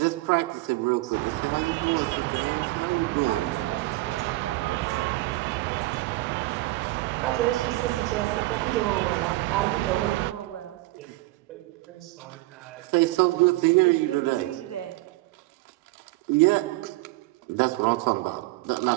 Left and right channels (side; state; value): left; quieter; 19.7 dB